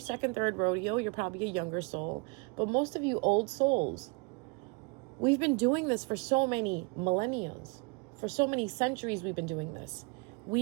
third rodeo. You're probably a younger soul. But most of you old souls, we've been doing this for so many millennia. For so many centuries we've been doing this.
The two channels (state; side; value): quieter; left; 32.1 dB